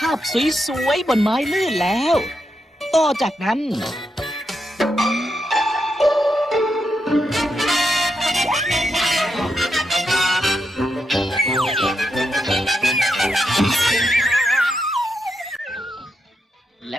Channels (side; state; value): both; normal; correlation 0.84